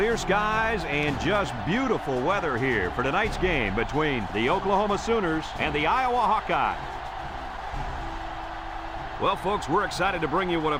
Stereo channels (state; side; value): identical; both; correlation 1.00